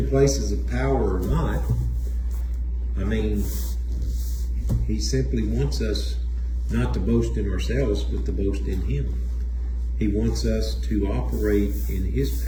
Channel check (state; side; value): identical; both; correlation 1.00